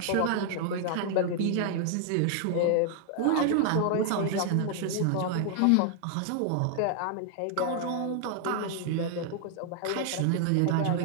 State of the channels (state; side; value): different; both; correlation 0.00